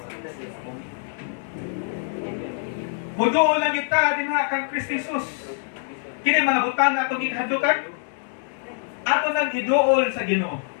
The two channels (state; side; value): silent; right; digital silence